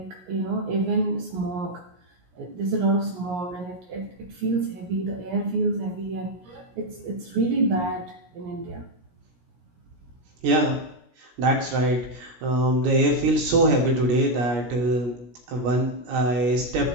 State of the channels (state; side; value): late; left; 17 ms